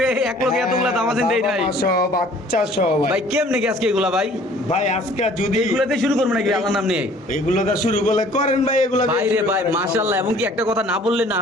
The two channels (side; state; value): both; normal; correlation 0.53